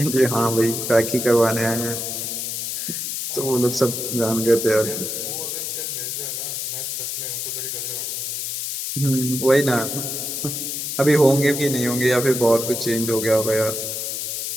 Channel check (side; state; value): left; noise; hiss, 3 dB below the sound